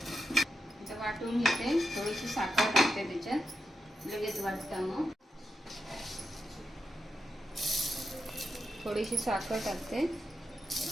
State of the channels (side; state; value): both; normal; correlation 0.87